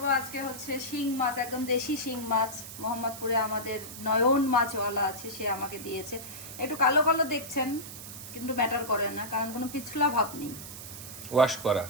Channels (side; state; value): right; noise; hiss, 12 dB below the sound